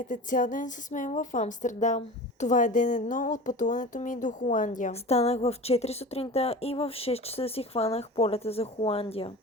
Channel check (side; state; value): both; normal; correlation 0.34